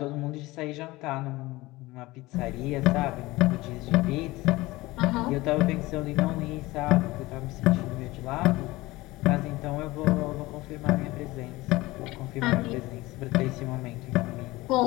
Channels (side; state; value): right; quieter; 19.9 dB